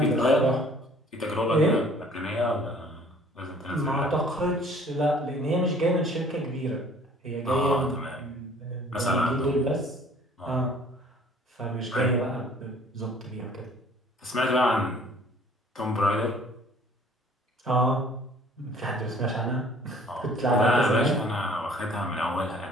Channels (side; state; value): both; normal; correlation 0.54